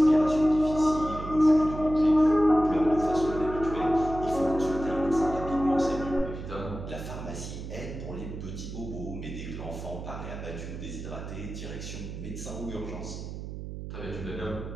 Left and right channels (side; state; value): right; noise; hum, 8 dB below the sound